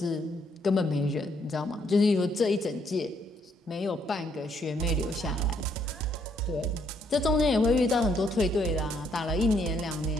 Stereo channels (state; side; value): normal; both; correlation 0.71